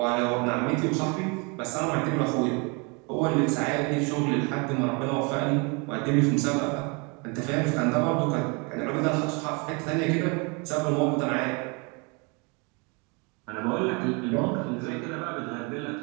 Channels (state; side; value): quieter; left; 31.2 dB